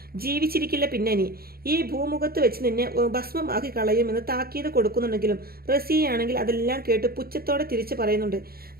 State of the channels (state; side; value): late; left; 0.44 ms